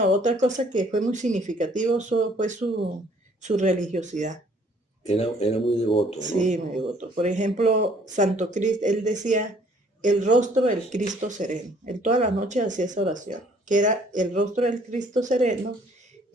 otra cosa que fue muy significativo fue su religiosidad. Era muy devoto, ¿no? Sí, muy devoto. Por ejemplo, Santo Cristo, él decía, el rostro del Cristo sereno. Él todas las noches hacía esa oración, que era el rostro del Cristo sereno,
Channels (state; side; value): normal; both; correlation 0.60